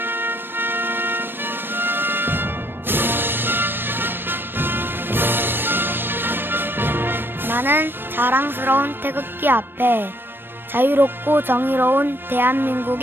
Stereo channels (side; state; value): left; late; 0.098 ms